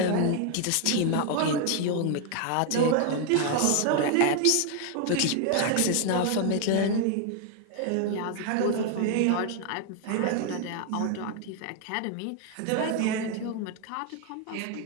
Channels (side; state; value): both; different; correlation 0.00